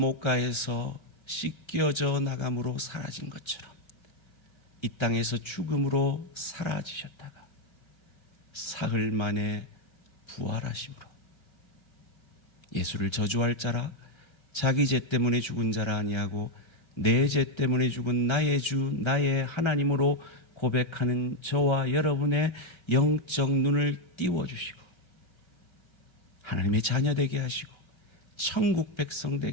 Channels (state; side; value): late; right; 1.3 ms